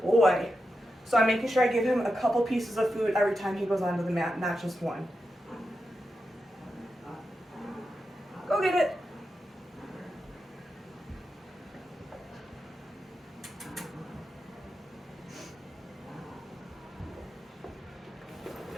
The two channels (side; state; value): both; normal; correlation 0.88